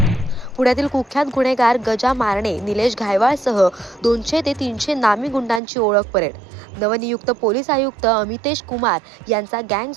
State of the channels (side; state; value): left; drops out; at 5.6 s